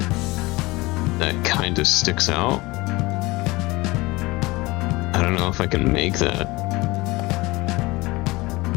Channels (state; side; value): quieter; right; 22.0 dB